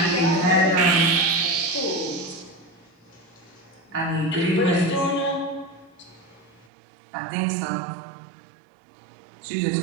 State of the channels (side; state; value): left; drops out; at 6.7 s